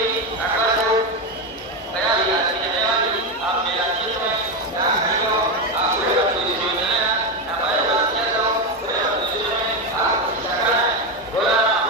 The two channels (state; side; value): normal; both; correlation 0.11